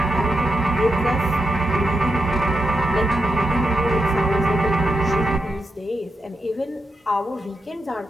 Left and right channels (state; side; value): normal; both; correlation 0.86